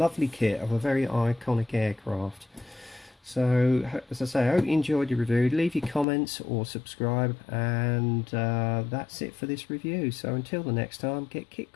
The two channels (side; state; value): right; drops out; at 6.1 s